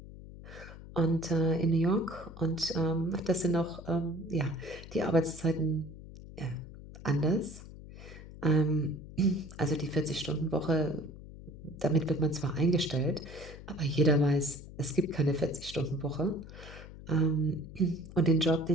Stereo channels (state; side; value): noise; left; hum, 15 dB below the sound